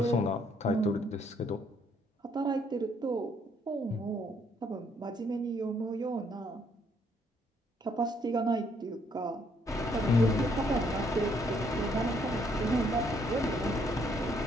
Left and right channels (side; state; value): both; normal; correlation 0.69